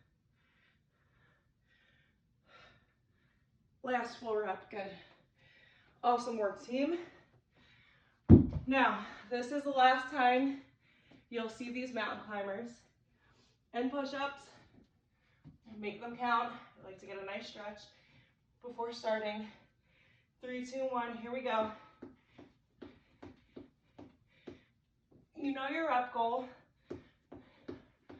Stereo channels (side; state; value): both; identical; correlation 1.00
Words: Last full rep, good. Awesome work, team. Now, this is the last time you'll see these mountain climbers and push-ups. Make them count. I like to get a nice stretch before starting. 3, 2, 1, here we go. You know your rep goal.